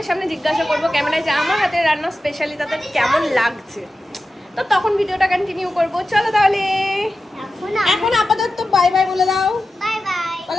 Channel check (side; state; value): both; normal; correlation 0.93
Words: সামনে জিজ্ঞাসা করবো ক্যামেরায় যে আমার হাতে রান্না স্পেশালি তাদের কেমন লাগছে, তো তখন ভিডিওটা কন্টিনিউ করবো। চলো তাহলে এখন আপাতত বাই বাই বলে দাও। Bye bye.